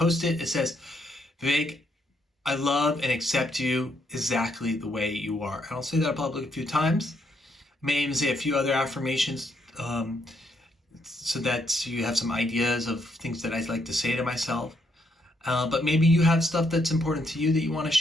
It says, Vivek, I love and accept you exactly the way you are. And I'll say that probably a few times. I may even say a few other affirmations so that you have some ideas of things that I like to say to myself. But maybe you have stuff that's important to you that you want to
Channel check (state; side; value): normal; both; correlation 0.75